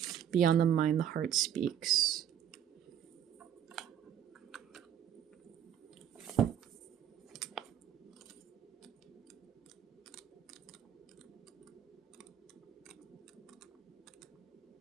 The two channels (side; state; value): left; quieter; 9.6 dB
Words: the Mind, the Heart Speaks.